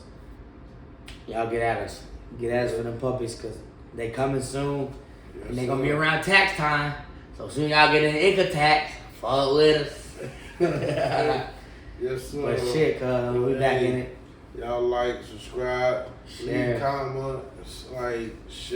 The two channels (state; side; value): identical; both; correlation 1.00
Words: Y'all get at us. Get at us for them puppies, cause they coming soon, Yes, and they gonna be sir. around tax time. So soon y'all get an income tax. Fuck with us. Yes, sir. But shit, cuz we back in it. Y'all like, subscribe, Share. leave comment, like,